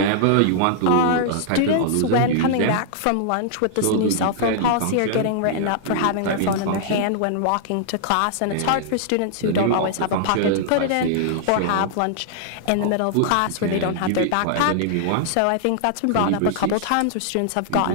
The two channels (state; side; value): different; both; correlation -0.01